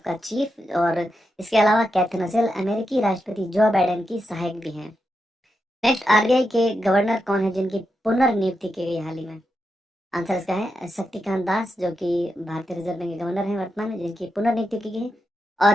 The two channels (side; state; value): both; normal; correlation 0.86